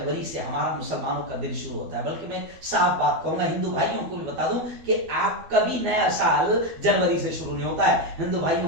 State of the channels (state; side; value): late; left; 12 ms